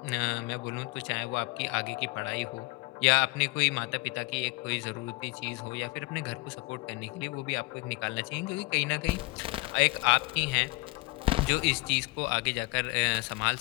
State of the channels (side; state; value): right; quieter; 24.5 dB